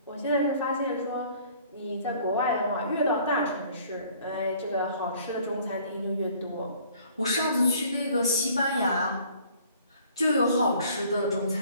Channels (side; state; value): both; inverted; correlation -0.56